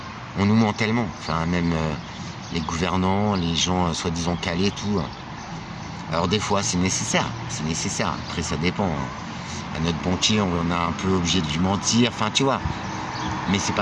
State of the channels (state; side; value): identical; both; correlation 1.00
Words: On nous ment tellement, enfin même les gouvernants, les gens soi-disant calés, tout. Alors des fois, c'est nécessaire. Après, ça dépend. À notre banquier, on est un peu obligé de lui mentir. Enfin, tu vois. Mais c'est